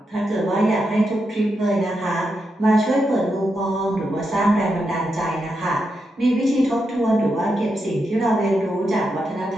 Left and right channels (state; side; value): normal; both; correlation 0.85